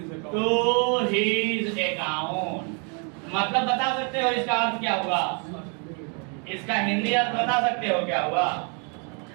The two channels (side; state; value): left; quieter; 37.3 dB